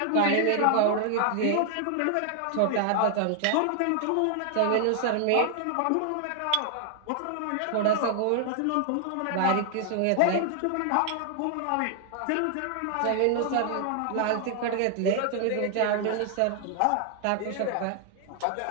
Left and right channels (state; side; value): different; both; correlation 0.00